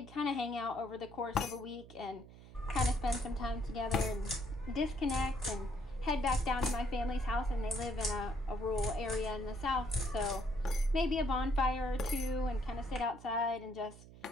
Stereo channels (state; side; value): noise; right; hum, 18 dB below the sound